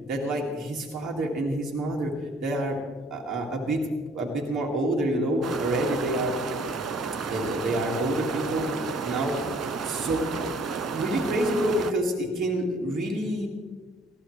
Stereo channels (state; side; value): normal; both; correlation 0.58